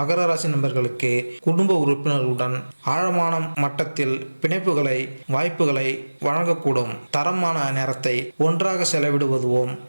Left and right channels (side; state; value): both; inverted; correlation -1.00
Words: ராசி நண்பர்களுக்கு குடும்ப உறுப்பினர்களுடன் ஆழமான மட்டத்தில் பிணைப்புகளை வாய்ப்புகளை வழங்கக்கூடும். தரமான நேரத்தை ஒன்றாக செலவிடுவதும்